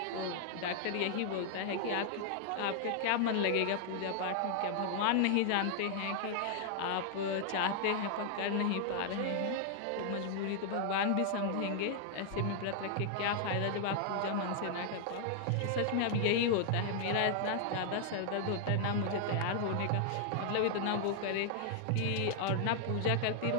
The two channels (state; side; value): different; both; correlation 0.00